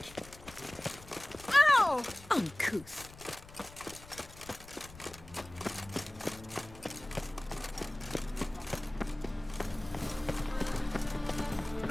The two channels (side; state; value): left; noise; rumble, 19 dB below the sound